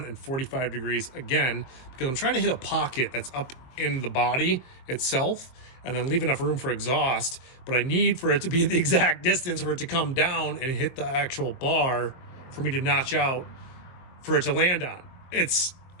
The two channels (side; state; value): right; late; 23 ms